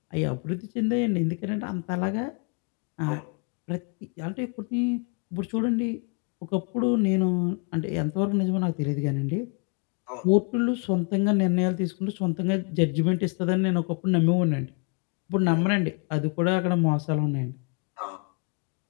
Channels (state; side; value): quieter; right; 37.2 dB